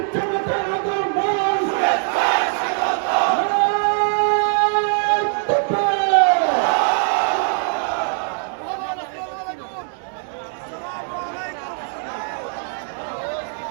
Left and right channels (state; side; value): silent; left; 59 dB below the other